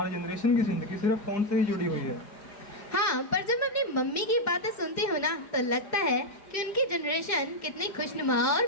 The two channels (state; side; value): late; right; 4.9 ms